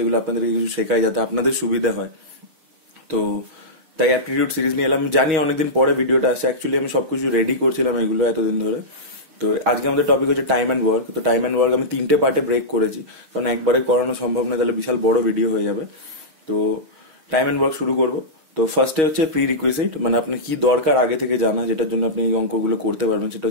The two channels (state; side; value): late; left; 6.3 ms